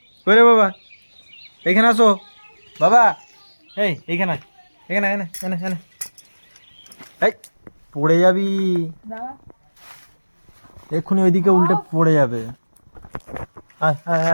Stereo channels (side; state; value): both; inverted; correlation -1.00